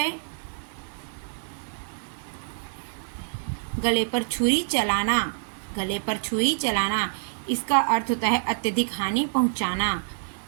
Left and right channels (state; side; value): silent; left; digital silence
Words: गले पर छुरी चलाना। गले पर छुरी चलाना इसका अर्थ होता है अत्यधिक हानि पहुंचाना।